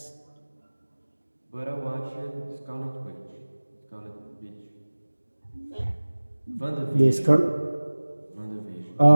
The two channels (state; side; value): inverted; both; correlation -1.00